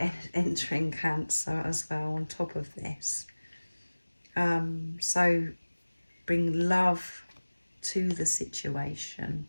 entering Cancer as well on top of this. So bring love to the situation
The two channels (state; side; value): inverted; both; correlation -1.00